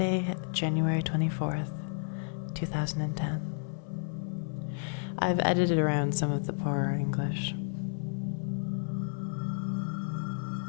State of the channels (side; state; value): right; silent; 57 dB below the other